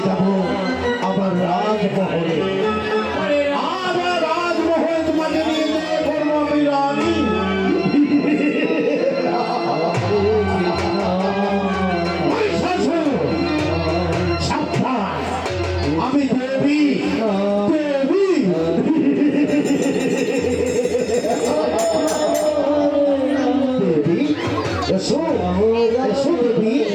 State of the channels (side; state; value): both; identical; correlation 1.00